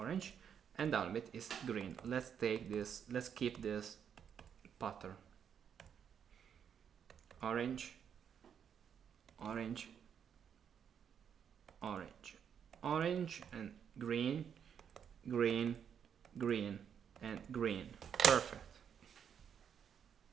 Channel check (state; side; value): quieter; left; 8.0 dB